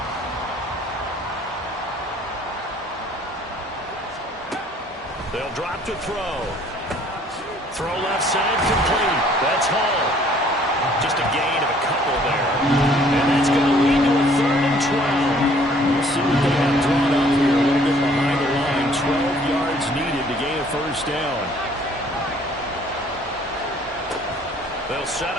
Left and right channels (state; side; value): normal; both; correlation 0.59